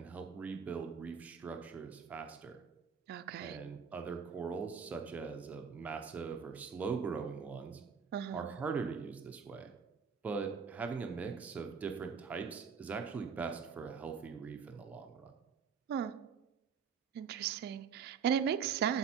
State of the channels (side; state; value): left; quieter; 6.4 dB